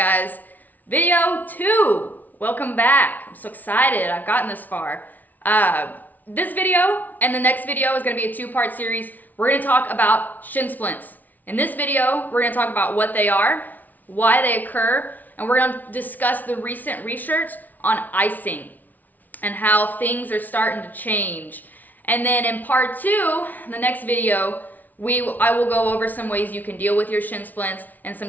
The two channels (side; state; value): right; late; 0.081 ms